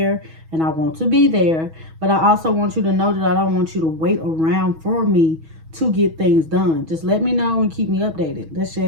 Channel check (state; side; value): late; left; 6.2 ms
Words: and I want to be there. But I also want you to know that I don't want you to wait around for me to get things done. Just let me know and keep me updated. That's